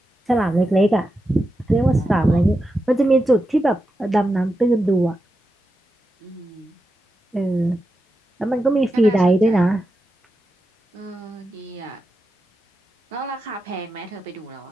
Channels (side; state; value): both; normal; correlation 0.89